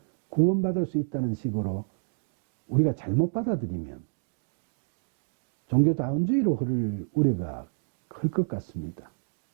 구원받을 수 있다는 식으로 우리가 잘못 받아들이면 종교다운주의로 흐를 우려가 클 것 같습니다.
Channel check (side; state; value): left; silent; digital silence